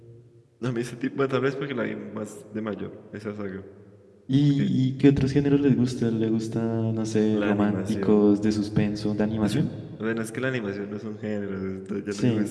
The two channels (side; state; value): both; identical; correlation 1.00